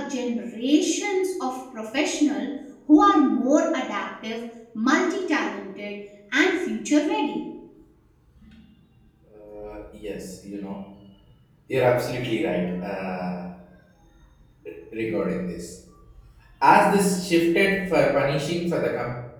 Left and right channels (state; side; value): identical; both; correlation 1.00